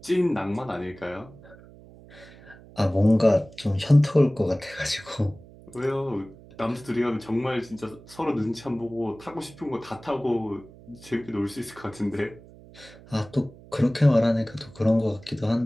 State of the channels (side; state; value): right; noise; hum, 21 dB below the sound